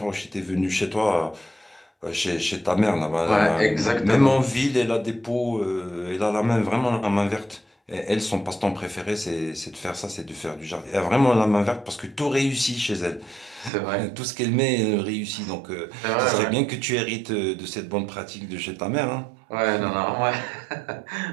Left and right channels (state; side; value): drops out; left; at 13.7 s